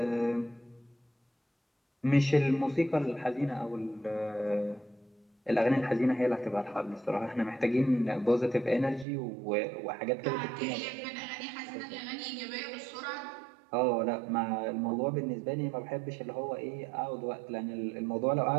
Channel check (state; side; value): drops out; left; at 9.1 s